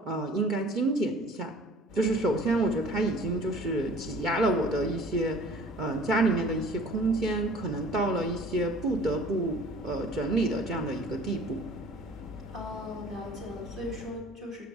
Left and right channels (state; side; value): normal; both; correlation 0.49